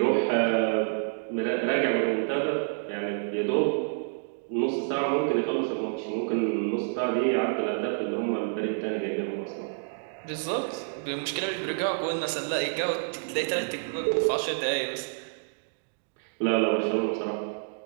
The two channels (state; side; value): silent; left; digital silence